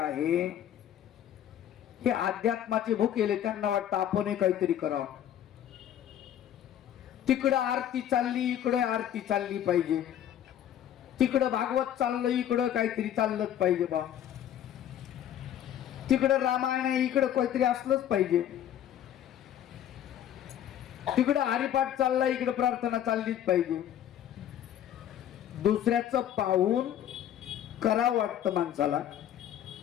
हे अध्यात्माचे भुकेले. त्यांना वाटतं आपण काहीतरी करावं. तिकडं आरती चालली इकडे आरती चालली पाहिजे. तिकडं भागवत चाललं इकडं काहीतरी चाललंच पाहिजे बा. तिकडं रामायण आहे इकडं काहीतरी असलंच पाहिजे. तिकडं हरिपाठ चालला इकडं प्रार्थना चाललीच पाहिजे. दुसऱ्याचं पाहून करावं वाटतं माणसाला.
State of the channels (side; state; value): right; quieter; 10.7 dB